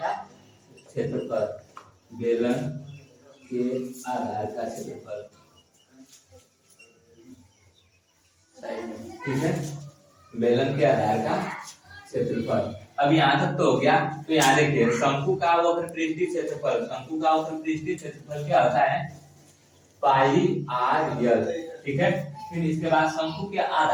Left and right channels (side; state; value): both; identical; correlation 1.00